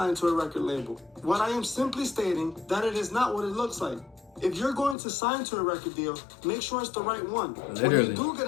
to a record label. What I am simply stating that it is not what it looks like. If you're going to sign to a record deal, make sure it's the right one. Literally. When you do get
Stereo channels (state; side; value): drops out; right; at 5.0 s